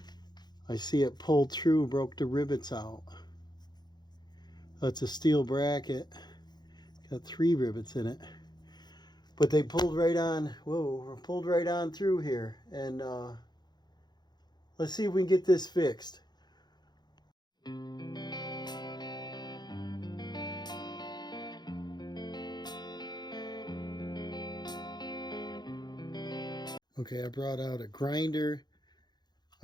I see it pulled through, broke the rivets out. That's a steel bracket. Got 3 rivets in it. But they pulled right on, whoa, pulled right on through here. And let's see if we can get this fixed. Okay, I brought out a grinder,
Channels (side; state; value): right; late; 0.21 ms